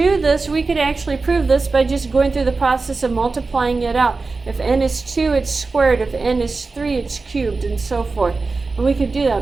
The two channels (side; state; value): left; quieter; 3.9 dB